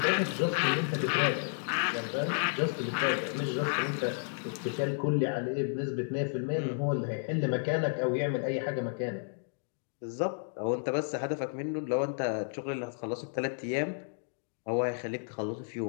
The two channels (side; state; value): right; silent; digital silence